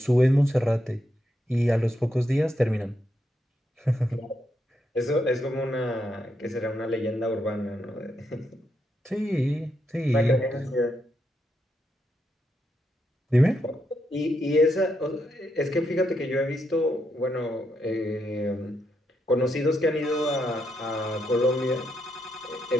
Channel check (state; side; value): normal; both; correlation 0.81